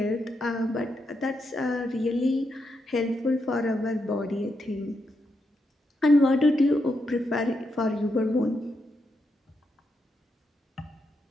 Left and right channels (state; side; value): normal; both; correlation 0.82